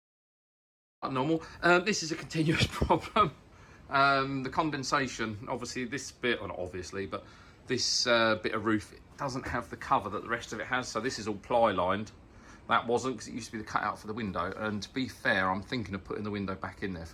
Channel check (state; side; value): identical; both; correlation 1.00